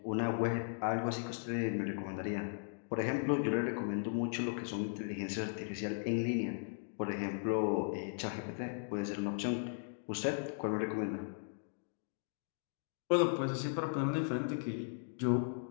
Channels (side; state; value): right; silent; digital silence